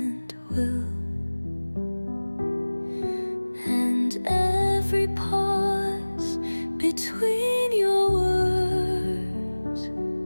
will. And every pause between your words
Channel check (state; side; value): inverted; both; correlation -1.00